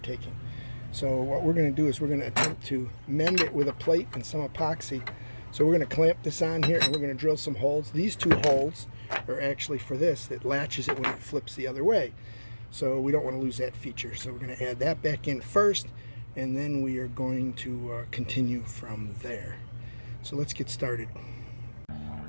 So what we're going to do is we're going to attempt to mend it with a plate and some epoxy. So we're going to clamp this on here, and we're going to drill some holes. These two holes are actually for this that latches it when it flips the other way. So we don't want to lose that feature. So we're going to add that back in first, and then we are going to continue from there. So let's get started.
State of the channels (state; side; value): inverted; both; correlation -1.00